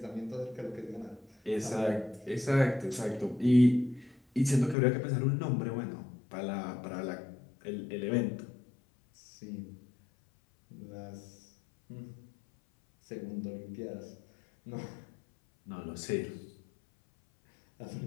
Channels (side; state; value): right; drops out; at 4.8 s